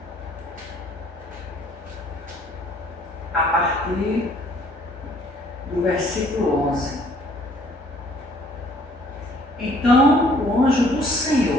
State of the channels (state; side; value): normal; both; correlation 0.59